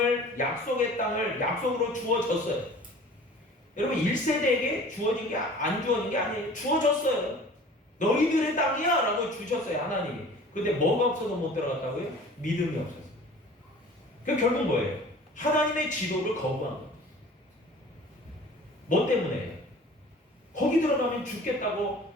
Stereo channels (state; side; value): normal; both; correlation 0.45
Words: 약속의 땅을 약속으로 주어졌어요. 여러분, 1세대에게 주어진 게, 안 주어진 게 아니에요. 주어졌어요. 너희들의 땅이야 라고 주셨어요, 하나님이. 근데 뭐가 없어서 못 들어갔다고요? 믿음이 없어서. 그 결국 뭐예요? 하나님의 지도를 거부한 거예요. 뭐 때문에? 거기 들어가면 죽겠다고